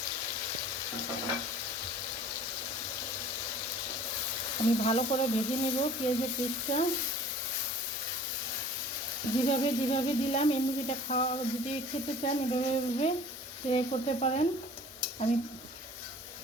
আমি ভালো করে ভেজে নেব পেঁয়াজের পেস্টটা। যেভাবে দিলাম এই মুরগিটা খাওয়া, যদি খেতে চান এভাবে ট্রাই করতে পারেন। আমি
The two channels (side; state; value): both; normal; correlation 0.48